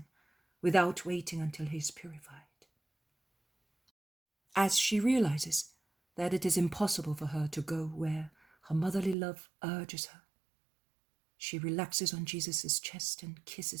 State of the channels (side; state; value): left; drops out; at 9.2 s